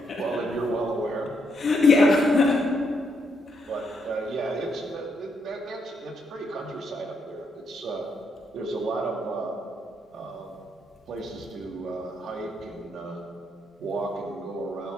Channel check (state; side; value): normal; both; correlation 0.77